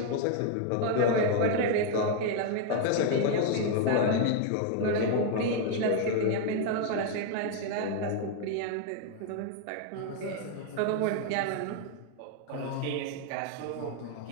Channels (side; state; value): both; different; correlation 0.00